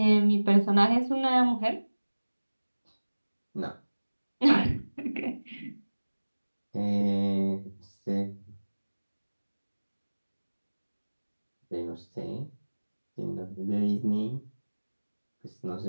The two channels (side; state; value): both; inverted; correlation -1.00